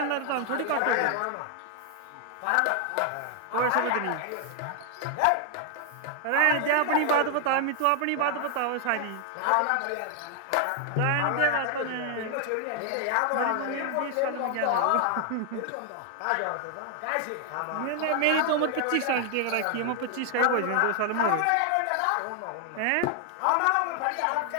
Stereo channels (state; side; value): different; both; correlation 0.00